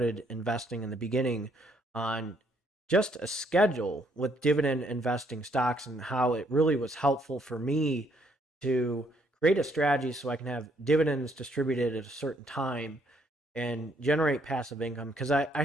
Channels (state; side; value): normal; both; correlation 0.69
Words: investing in the beginning on just a schedule with dividend investing stocks and how it really was helpful for me to create a strategy so I can have dividends distributed at a certain time and generate passive income because I